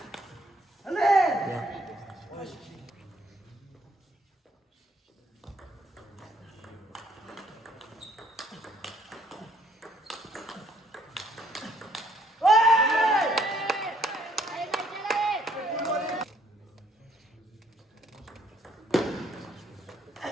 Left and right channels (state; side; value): normal; both; correlation 0.66